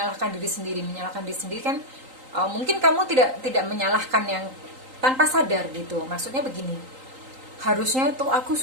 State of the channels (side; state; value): left; late; 3.8 ms